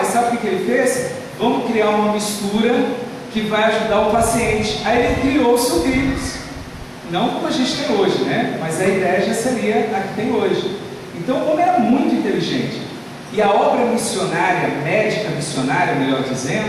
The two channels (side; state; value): both; identical; correlation 1.00